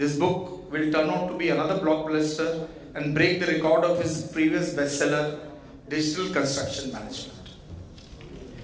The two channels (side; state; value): both; identical; correlation 1.00